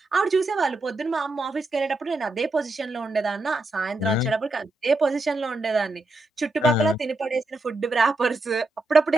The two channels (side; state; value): both; normal; correlation 0.85